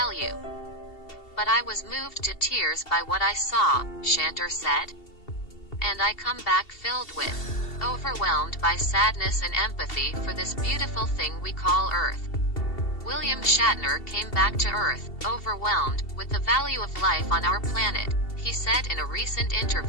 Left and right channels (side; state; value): right; late; 2.7 ms